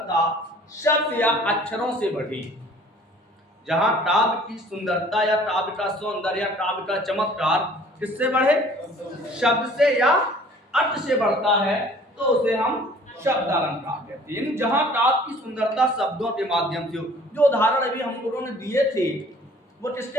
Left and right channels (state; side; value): normal; both; correlation 0.52